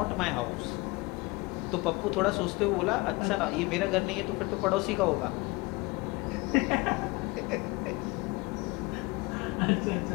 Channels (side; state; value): right; quieter; 24.4 dB